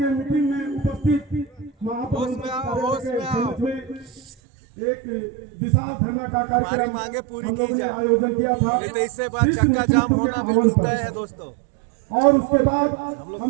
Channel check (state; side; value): drops out; left; at 4.2 s